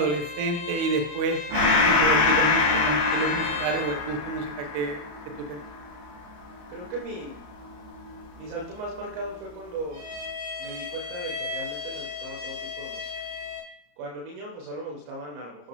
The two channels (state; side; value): late; left; 34 ms